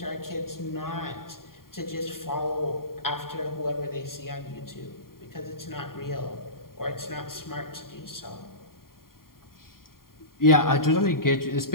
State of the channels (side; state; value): right; late; 0.92 ms